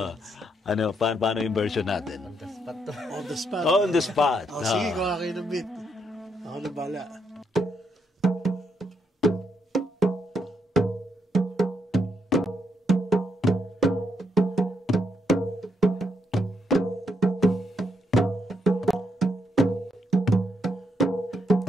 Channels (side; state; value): both; normal; correlation 0.77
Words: Paano yung version natin? On the spot to. On the spot. Oh, on the spot. Sige, gawa kayo ng beat. Ako na bala.